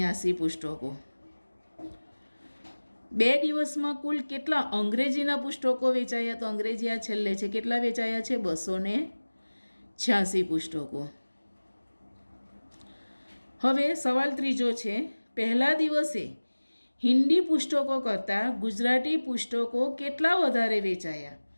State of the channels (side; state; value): both; inverted; correlation -1.00